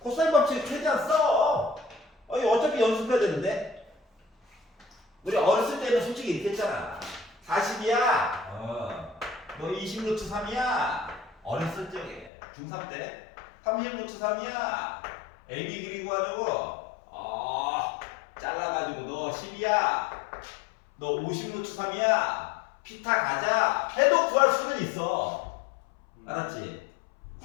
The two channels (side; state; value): right; drops out; at 12.3 s